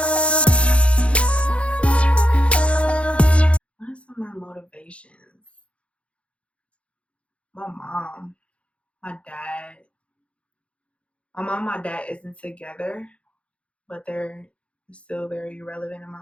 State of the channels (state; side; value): late; right; 0.061 ms